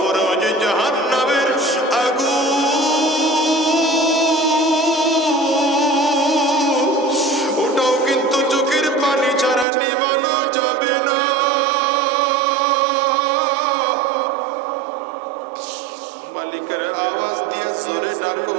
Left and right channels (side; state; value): left; drops out; at 9.7 s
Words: যে জাহান্নামের আগুন ওটাও কিন্তু চোখের পানি ছাড়া নিভানো যাবে না। মালিকের আওয়াজ দিয়ে জোরে ডাকো